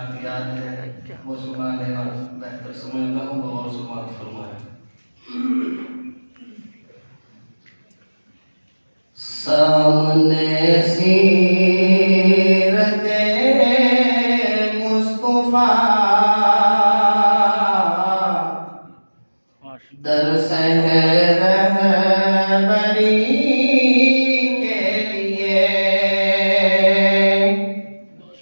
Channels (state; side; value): inverted; both; correlation -1.00